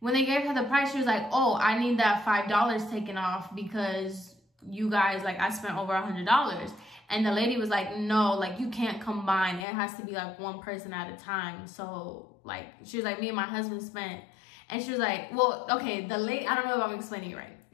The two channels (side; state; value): right; drops out; at 9.7 s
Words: they gave her the price, she was like, oh, I need that $5 taken off because you guys, like, I spent over $100. And the lady was like, no, like, you can't combine. It has to be like one person at a time. So, like, she was like, me and my husband spent. And she was like, well, okay, the lady, I don't know if I'm explaining it right.